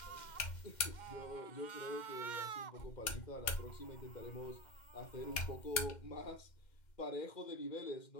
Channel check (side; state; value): right; late; 2.1 ms